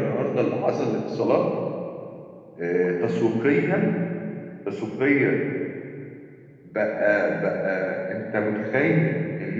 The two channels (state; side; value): identical; both; correlation 1.00